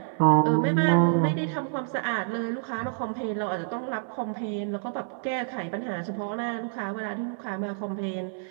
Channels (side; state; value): left; silent; 60 dB below the other